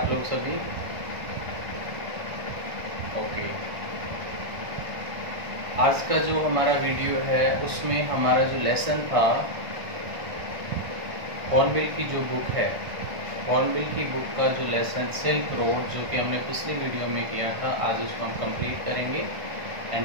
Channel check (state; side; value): late; left; 1.6 ms